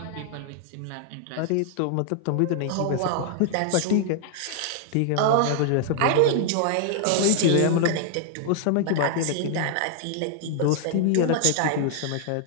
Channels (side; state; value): both; different; correlation -0.01